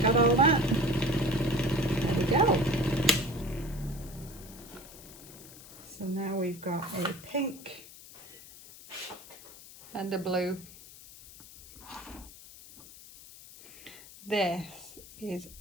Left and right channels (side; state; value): left; noise; hiss, 18 dB below the sound